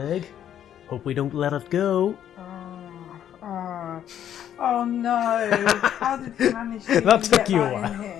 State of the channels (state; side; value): quieter; right; 10.2 dB